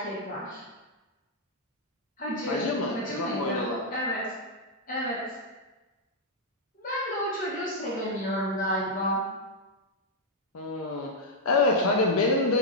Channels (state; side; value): normal; both; correlation -0.04